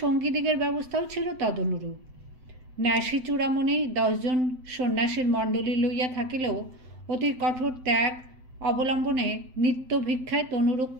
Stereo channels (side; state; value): left; late; 7.8 ms